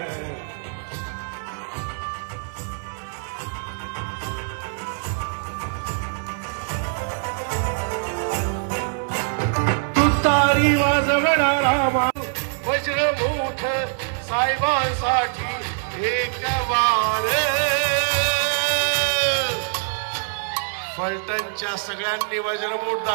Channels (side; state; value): left; silent; 63 dB below the other